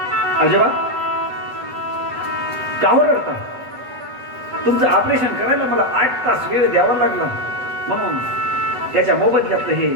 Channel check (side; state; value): left; late; 8.0 ms